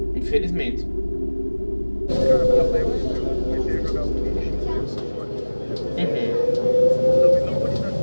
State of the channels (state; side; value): inverted; both; correlation -1.00